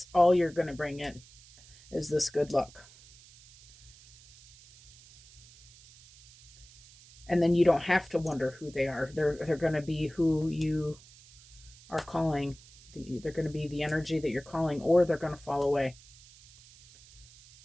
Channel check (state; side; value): noise; right; hiss, 23 dB below the sound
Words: all you're going to bring in is this good luck. And then you don't have to wonder who they are. They're going to be who you are calling. They're going to be the energy that you're calling, or they're going to fall away.